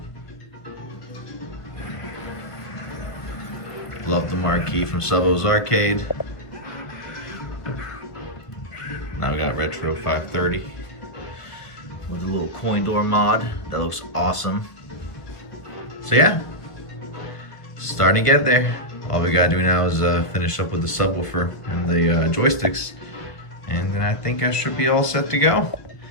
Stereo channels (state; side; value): late; right; 1.2 ms